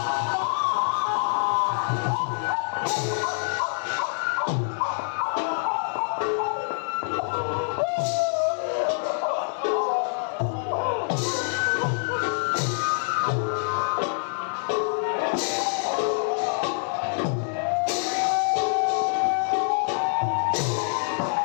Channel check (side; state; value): right; silent; digital silence